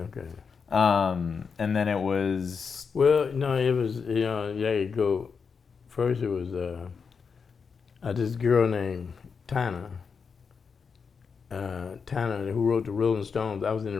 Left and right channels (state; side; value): quieter; right; 5.8 dB